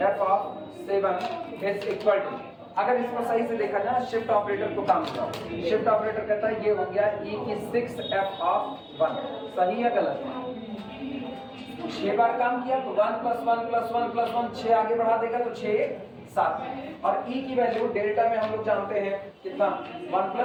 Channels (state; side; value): identical; both; correlation 1.00